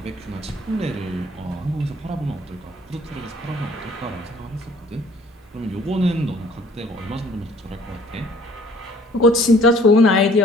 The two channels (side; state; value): both; normal; correlation 0.55